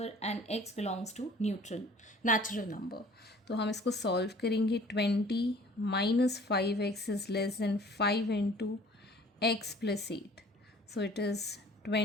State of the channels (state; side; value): normal; both; correlation 0.51